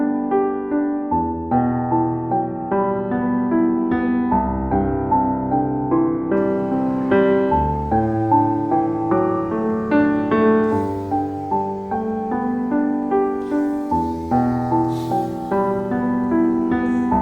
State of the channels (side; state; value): both; identical; correlation 1.00